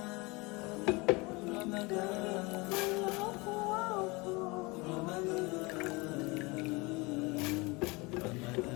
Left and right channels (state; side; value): quieter; right; 25.6 dB